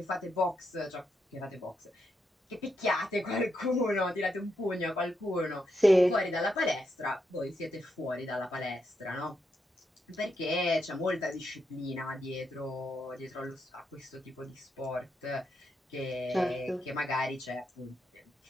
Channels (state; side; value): normal; both; correlation 0.82